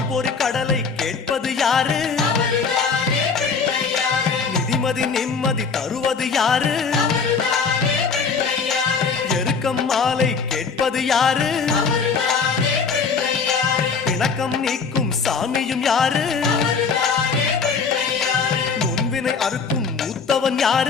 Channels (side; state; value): right; quieter; 5.3 dB